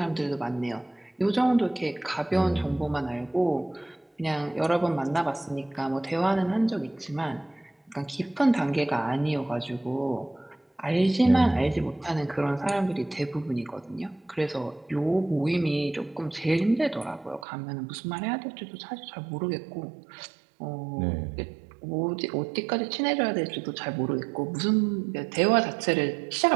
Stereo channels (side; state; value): left; drops out; at 17.4 s